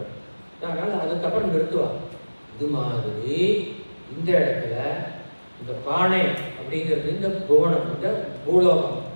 அதனால் அதுக்கப்புறம் நிறுத்துவாங்க. இது மாதிரி இந்த இடத்துல இந்த பானை அப்படிங்கிறது இந்த புவனம், இந்த பூலோகம்,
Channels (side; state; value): both; inverted; correlation -1.00